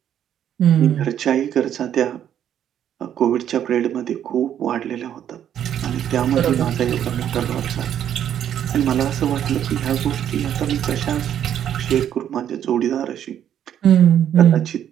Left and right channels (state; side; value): quieter; left; 10.0 dB